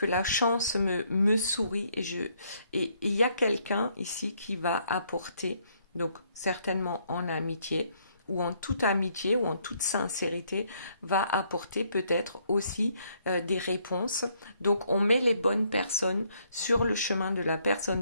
la chance me sourit et il y a quelqu'un ici qui va apporter, donc certainement en amitié ou en toute amitié ou en toute sincérité, va apporter peut-être aussi des réponses. Donc on met les bonnes personnes sur le chemin de la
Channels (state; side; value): inverted; both; correlation -0.69